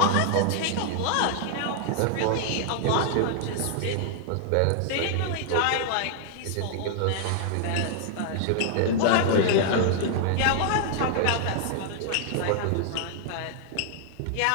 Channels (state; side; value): different; both; correlation -0.01